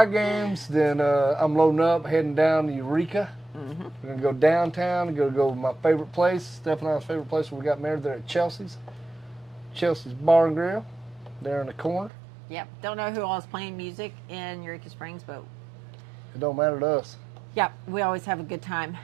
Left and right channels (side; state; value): left; drops out; at 12.1 s